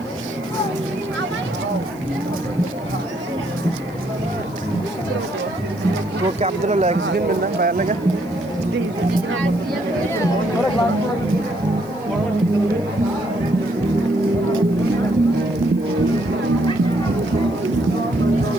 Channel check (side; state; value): left; noise; hiss, 25 dB below the sound